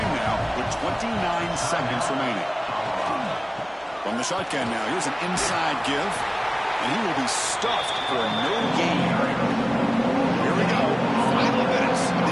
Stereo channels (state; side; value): identical; both; correlation 1.00